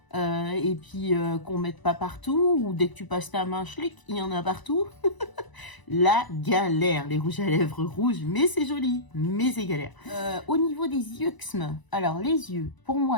et puis qu'on mette pas partout, ou dès que tu passes ta main, schlick, il y en a partout. La galère, les rouges à lèvres rouges, mais c'est joli, mais c'est galère. Au niveau des yeux, alors les yeux, pour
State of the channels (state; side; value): late; right; 1.0 ms